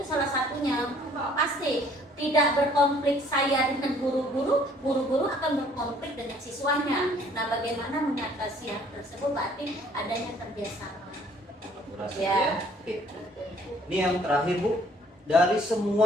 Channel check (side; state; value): both; normal; correlation 0.59